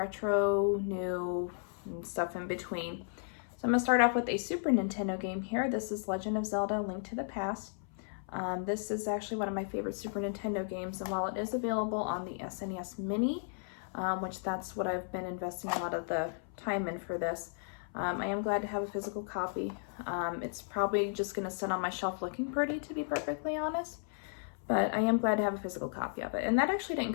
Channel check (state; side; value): silent; right; 55 dB below the other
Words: new, and stuff in between. So I'm going to start off with a Super Nintendo game here. This is Legend of Zelda: Link to the Past. This is actually one of my favorite Super Nintendo games, and while it is available on the SNES Mini, which that's what I've been investing a lot of the time in for this, I am glad to have a physical copy. It's probably just going to sit on my shelf looking pretty, to be perfectly honest, but I am glad to have a physical copy of it. And that actually didn't